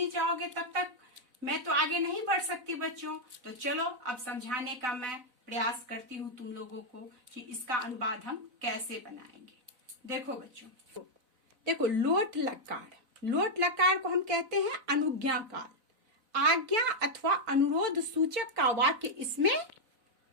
जाओगे तब तक मैं तो आगे नहीं बढ़ सकती बच्चों। तो चलो अब समझाने का मैं प्रयास करती हूँ तुम लोगों को कि इसका अनुवाद हम कैसे बनाएंगे। देखो बच्चों, देखो लोट लकार को हम कहते हैं अनुज्ञा काल। आज्ञा अथवा अनुरोध सूचक का वाक्य इसमें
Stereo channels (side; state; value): left; late; 4.0 ms